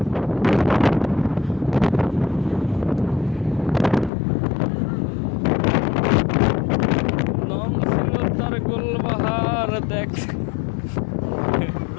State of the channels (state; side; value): drops out; right; at 4.1 s